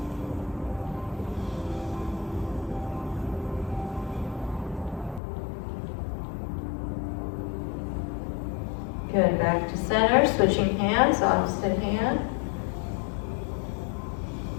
Good, back to center, switching hands, opposite hand.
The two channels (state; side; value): drops out; right; at 5.2 s